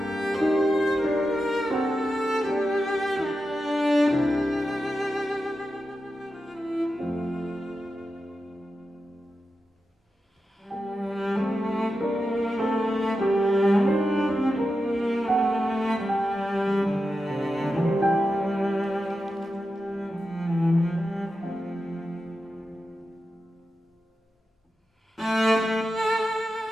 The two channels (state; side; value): normal; both; correlation 0.90